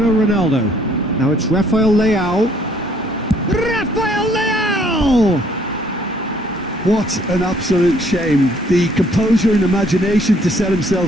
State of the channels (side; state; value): both; normal; correlation 0.63